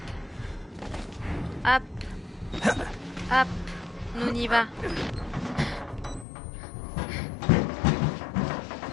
Hop. Hop. Nous on y va.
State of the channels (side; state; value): right; drops out; at 6.2 s